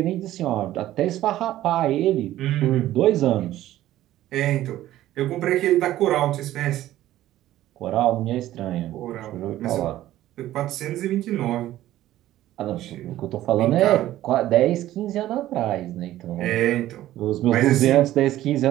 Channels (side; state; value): left; quieter; 14.2 dB